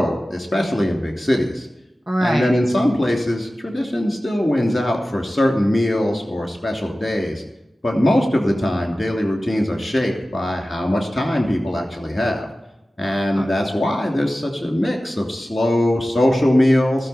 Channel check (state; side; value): normal; both; correlation 0.96